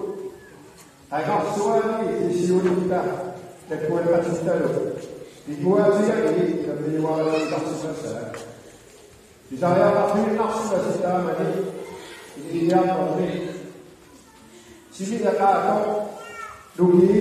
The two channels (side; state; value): both; identical; correlation 1.00